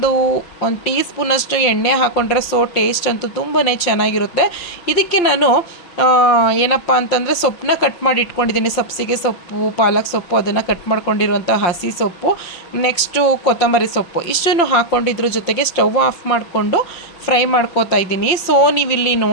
ಟೀ ಸ್ಪೂನಷ್ಟು ಎಣ್ಣೆ ಹಾಕ್ಕೊಂಡ್ರೆ ಸೊ ಟೇಸ್ಟ್ ಅಂತೂ ತುಂಬಾ ಚೆನ್ನಾಗಿರುತ್ತೆ. ಇದಕ್ಕೆ ನಾನು ಏನಪ್ಪ ಅಂತಂದರೆ ಸೊಪ್ಪನ್ನ ಕಟ್ ಮಾಡಿ ಇಟ್ಕೊಂಡಿದ್ದೀನಿ. ಸಬ್ಸಿಗೆ ಸೊಪ್ಪು, ಪಾಲಕ್ ಸೊಪ್ಪು ಅದನ್ನು ಕಟ್ ಮಾಡ್ಕೊಂಡಿರುವಂಥ ಹಸಿ ಸೊಪ್ಪು, ನೆಕ್ಸ್ಟು ಕೊತ್ತಂಬರಿ ಸೊಪ್ಪು ಇಷ್ಟನ್ನು ಹಾಕ್ಕೊಂಡಿದ್ರ ಜೊತೆಗೆ ಸ್ಟವ್ ಆಫ್ ಮಾಡಿಕೊಂಡು ಫ್ರೈ ಮಾಡ್ಕೋತಾ ಇದ್ದೀನಿ. ಸೊ ನೀವಿಲ್ಲಿ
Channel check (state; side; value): late; right; 5.7 ms